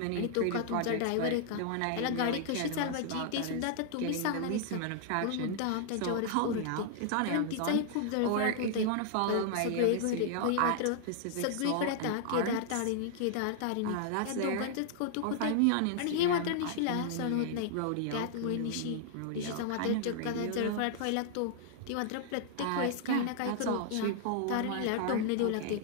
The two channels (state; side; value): different; both; correlation -0.01